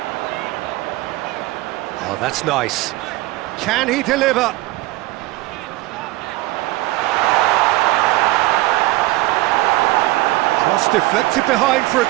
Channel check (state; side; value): quieter; left; 19.1 dB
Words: Oh, that's nice. Can he deliver? Cross deflected behind for a